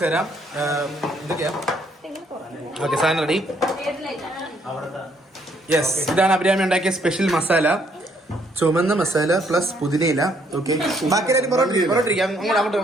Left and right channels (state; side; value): normal; both; correlation 0.68